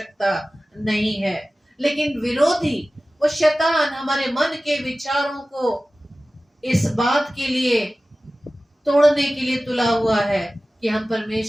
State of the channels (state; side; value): normal; both; correlation 0.96